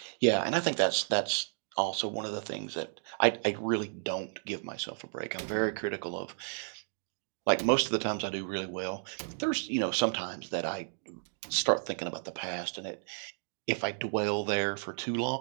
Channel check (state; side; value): silent; left; digital silence